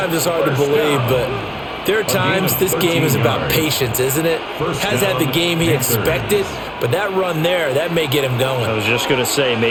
it's hard to believe, but there are times this game is about patience, isn't it? Has had the game he expected, but that run there, that may get him going. I was just going to say,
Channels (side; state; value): both; identical; correlation 1.00